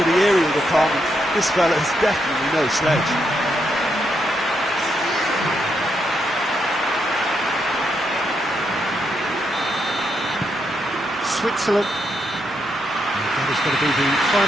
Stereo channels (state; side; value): normal; both; correlation 0.80